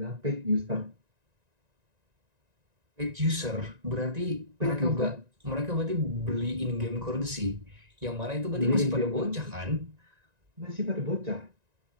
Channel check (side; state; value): left; late; 1.9 ms